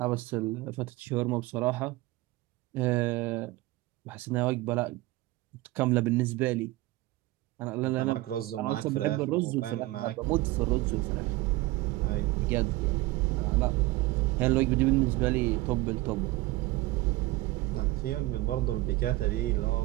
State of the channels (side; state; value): left; quieter; 19.2 dB